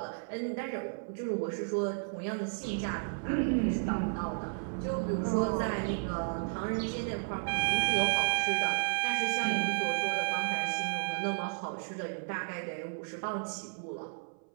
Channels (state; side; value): silent; left; 56 dB below the other